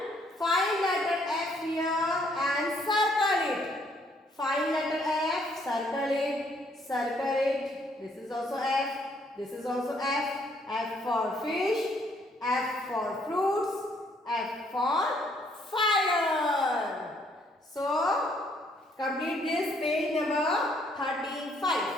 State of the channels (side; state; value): both; normal; correlation 0.67